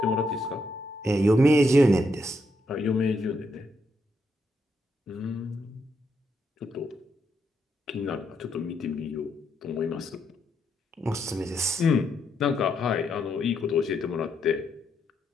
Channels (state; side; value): normal; both; correlation 0.78